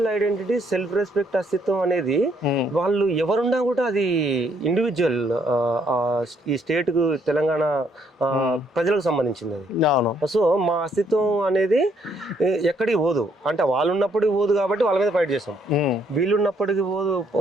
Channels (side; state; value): both; normal; correlation 0.70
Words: ఐడెంటిటీ, సెల్ఫ్ రెస్పెక్ట్, అస్తిత్వం అనేది వాళ్ళు ఎవరున్నా కూడా అది ఇండివిజువల్ ఈ స్టేట్ కు తెలంగాణ ప్రజలకు సంబంధించింది అది. సో మా అస్తిత్వం అనేది ఎక్కడికి పోదు, అంటే వాళ్ళు ఉన్నప్పటికి పోదు కాబట్టి వాళ్ళ మీద ఫైట్ చేస్తాం, వీళ్ళు ఉన్నప్పటికీ